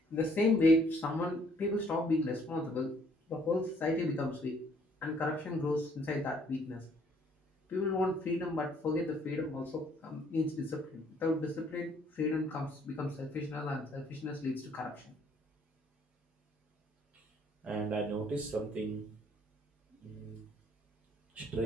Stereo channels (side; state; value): both; normal; correlation 0.63